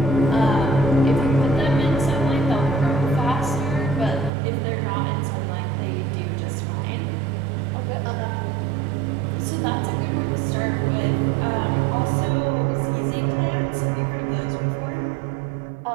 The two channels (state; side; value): drops out; left; at 4.3 s